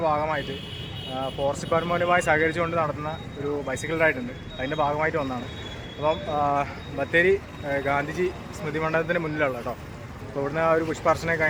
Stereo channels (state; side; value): identical; both; correlation 1.00